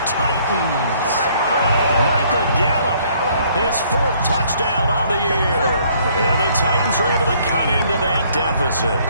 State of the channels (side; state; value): both; inverted; correlation -0.63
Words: Titans. Michael Gallup, his 4th touchdown on the year. And the Titans are able to cut into that deficit.